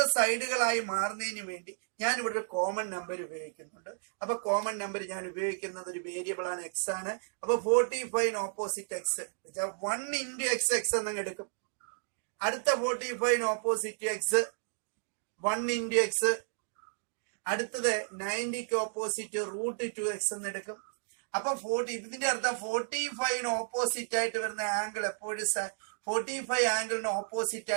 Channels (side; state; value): left; silent; digital silence